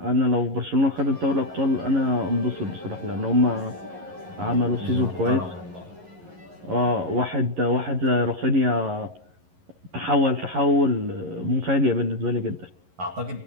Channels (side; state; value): left; late; 11 ms